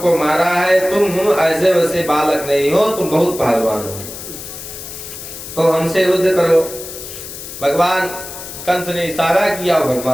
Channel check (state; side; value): noise; left; hiss, 11 dB below the sound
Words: मारा है, तुम ऐसे वैसे बालक नहीं हो, तुम बहुत पहलवान हो, तो हमसे युद्ध करो। भगवान कंस ने इशारा किया और